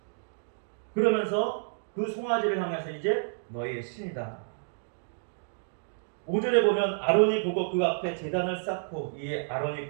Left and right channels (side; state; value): left; silent; digital silence